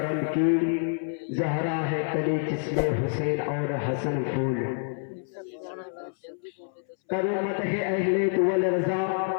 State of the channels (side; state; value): right; silent; 60 dB below the other